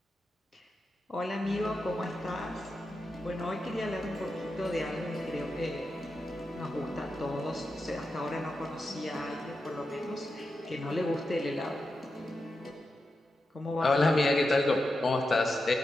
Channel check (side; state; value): both; normal; correlation 0.89